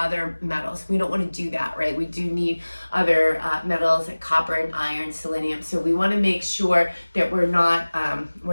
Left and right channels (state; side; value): inverted; both; correlation -1.00